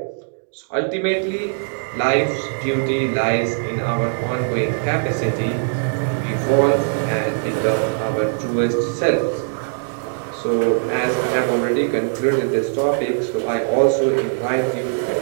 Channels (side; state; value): left; silent; digital silence